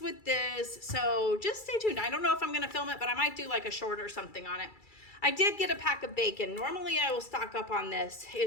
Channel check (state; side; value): late; right; 2.3 ms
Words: with this. So just stay tuned. I don't know if I'm going to film it, but I might do like a short or something on it. I did get a pack of bacon. Normally I will stock up on this.